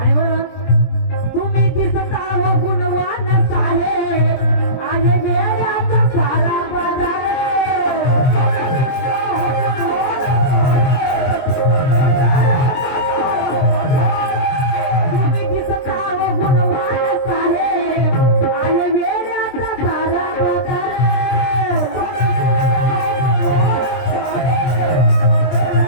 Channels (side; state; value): right; late; 23 ms